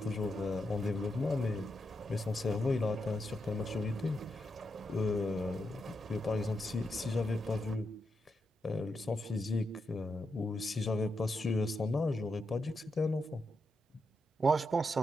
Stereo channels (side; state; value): both; normal; correlation 0.85